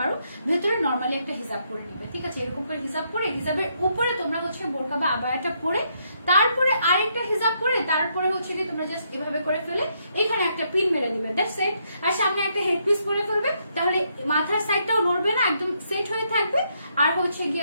ভেতরে নর্মালি একটা হিজাব পরে নিবে, ঠিক আছে? এরকম করে হিজাব পরে, হিজাবের উপরে তোমরা হচ্ছে বোরকা বা আবায়াটা পরে, তারপরে আরেকটা হিজাব পরে, তারপরে হচ্ছে কি তোমরা জাস্ট এভাবে করে ফেলে এখানে একটা পিন মেরে দিবে, দ্যাটস ইট। আর সামনে একটা হেডপিস পরে ফেলবে, তাহলে মাথার সাইডটাও নড়বে না, একদম সেট হয়ে থাকবে। আর হচ্ছে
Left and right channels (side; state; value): both; inverted; correlation -0.75